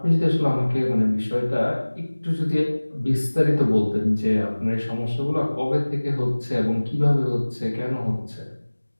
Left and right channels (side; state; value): both; inverted; correlation -1.00